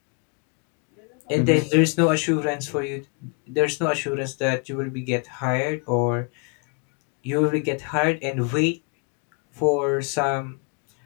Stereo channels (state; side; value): quieter; right; 36.5 dB